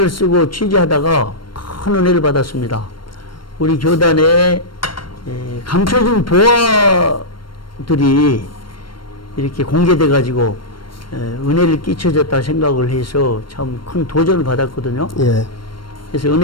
쓰고 취재하다가 큰 은혜를 받았습니다. 우리 교단에 감춰진 보화들이 이렇게 공개돼 가지고 은혜를 끼쳐졌다 생각을 해서 참 큰 도전을 받았거든요. 예, 그래서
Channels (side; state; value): right; late; 0.72 ms